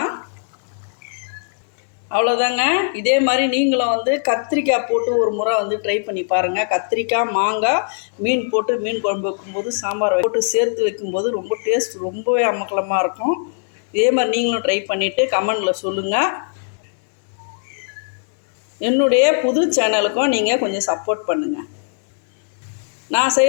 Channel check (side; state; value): right; silent; 61 dB below the other